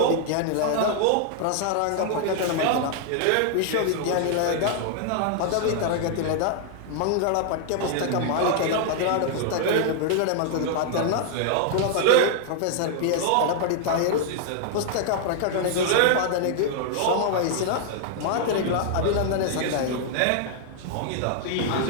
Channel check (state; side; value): different; both; correlation -0.01